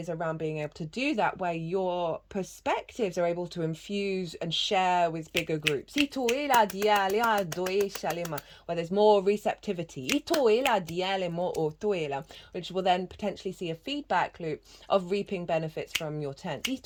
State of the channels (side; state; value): both; identical; correlation 1.00